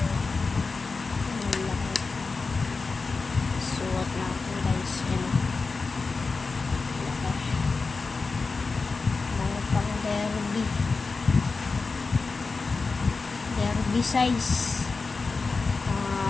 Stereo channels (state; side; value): quieter; right; 4.2 dB